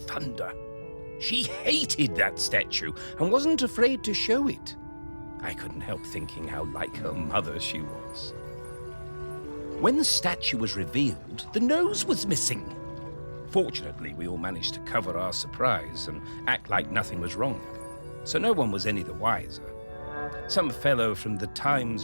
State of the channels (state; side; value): inverted; both; correlation -1.00